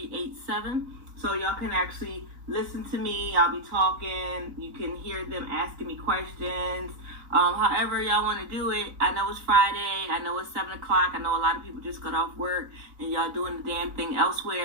So y'all can actually listen to me. I'll be talking. You can hear them asking me questions. However y'all want to do it. I know it's Friday. I know it's 7 o'clock. I know a lot of people just got off work and y'all doing the damn thing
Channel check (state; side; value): late; left; 4.0 ms